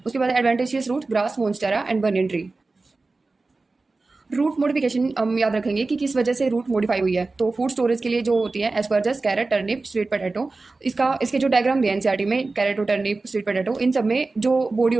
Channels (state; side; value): quieter; left; 3.6 dB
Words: उसके बाद adventitious root grass, monstera and banyan tree. Root modification हम याद रखेंगे कि किस वजह से रूट मॉडिफाई हुई है। तो फूड स्टोरेज के लिए जो होती है एस्परजस, कैरेट, टर्निप, स्वीट पोटैटो। इसके जो डायग्राम दिए एनसीईआरटी में, कैरेट, टर्निप, स्वीट पोटैटो, इन सब में जो बॉडी